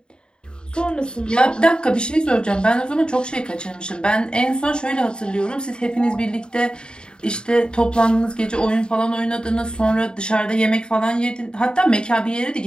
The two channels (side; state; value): right; late; 0.049 ms